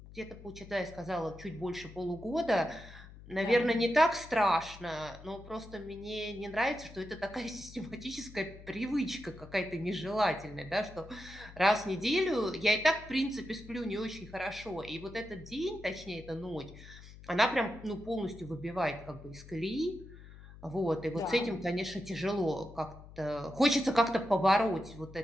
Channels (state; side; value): noise; left; hum, 17 dB below the sound